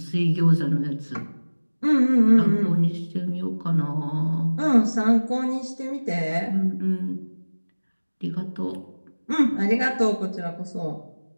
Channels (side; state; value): both; inverted; correlation -1.00